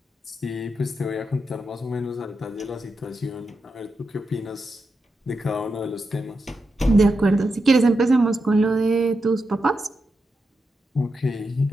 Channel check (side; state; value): both; normal; correlation 0.87